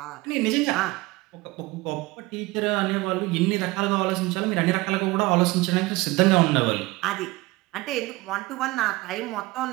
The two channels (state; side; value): quieter; left; 21.2 dB